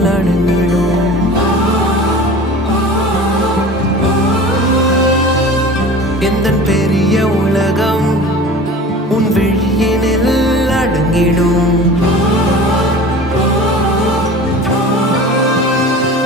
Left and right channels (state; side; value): normal; both; correlation 0.39